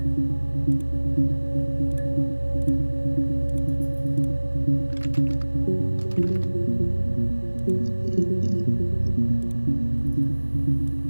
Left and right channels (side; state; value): both; inverted; correlation -1.00